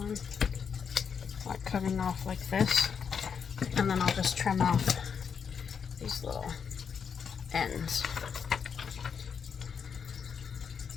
like cutting off like this. And then I'll just trim off these little ends.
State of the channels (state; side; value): quieter; right; 6.7 dB